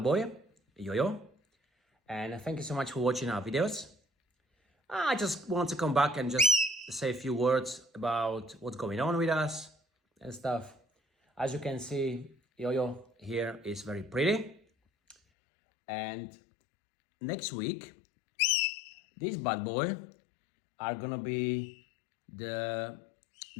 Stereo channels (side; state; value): right; drops out; at 15.2 s